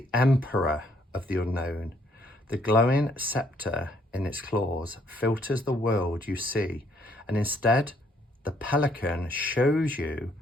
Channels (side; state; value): both; normal; correlation 0.68